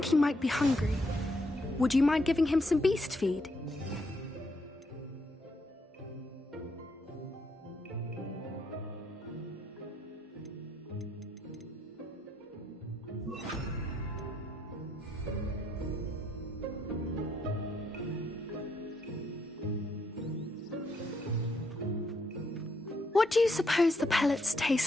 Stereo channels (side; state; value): both; normal; correlation 0.75